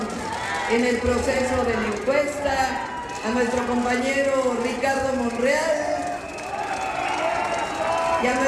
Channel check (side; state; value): both; identical; correlation 1.00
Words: en el proceso de la encuesta, a nuestro compañero Ricardo Monreal y a